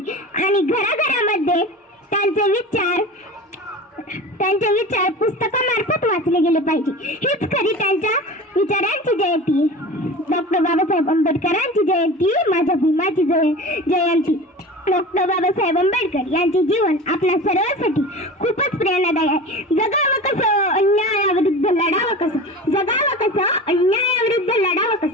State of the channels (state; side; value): normal; both; correlation 0.34